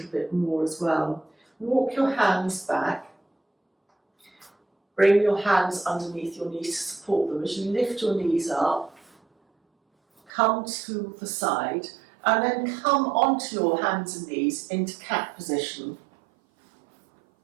bit more as well. Walk your hands back. Bring your hands underneath your knees to support them. As you lift your knees up, come to the side, and then come onto your hands and knees into cat position.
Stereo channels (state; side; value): drops out; left; at 10.3 s